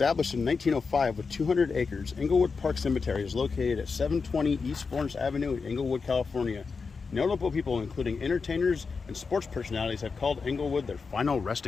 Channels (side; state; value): right; quieter; 4.9 dB